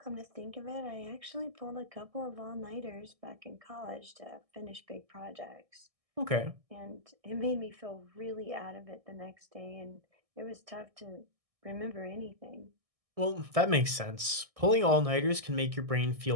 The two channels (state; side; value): late; left; 1.6 ms